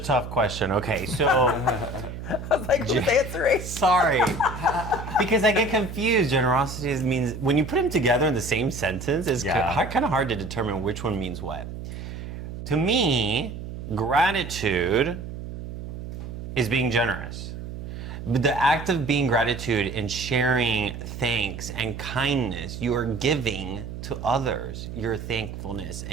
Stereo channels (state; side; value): noise; right; hum, 9 dB below the sound